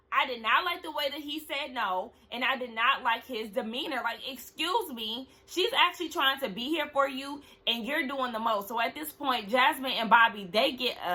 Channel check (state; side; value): identical; both; correlation 1.00